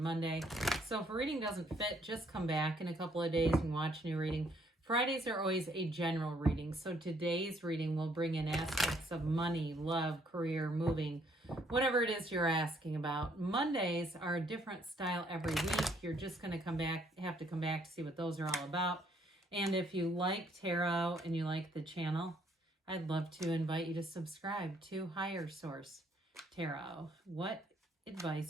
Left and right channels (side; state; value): both; normal; correlation 0.67